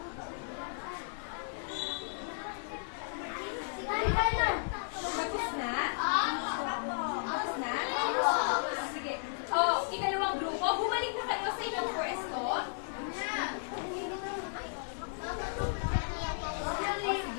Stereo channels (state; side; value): silent; right; digital silence